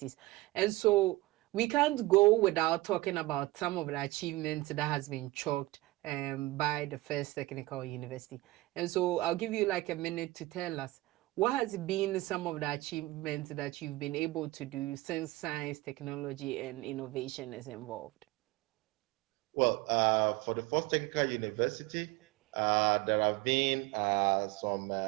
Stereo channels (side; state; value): left; quieter; 19.9 dB